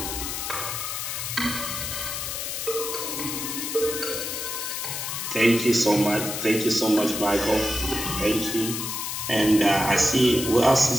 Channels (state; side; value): noise; left; hiss, 4 dB below the sound